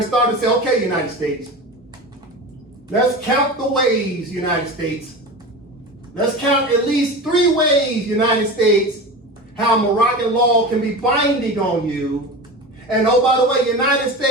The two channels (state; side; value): normal; both; correlation 0.29